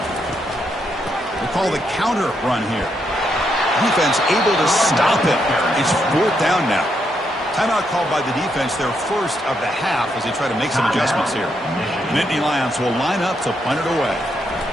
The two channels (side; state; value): both; normal; correlation 0.78